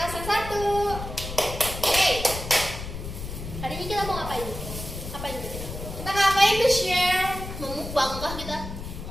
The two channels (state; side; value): noise; left; rumble, 8 dB below the sound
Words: absen 1. Hey, Hari ini kita mau ngapain? Ngapain kita? kita ngapain tuh share? Mau mukbang kah kita?